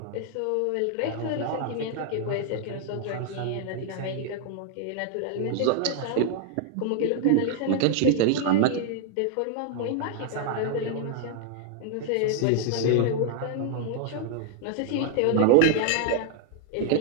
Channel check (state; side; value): different; both; correlation 0.00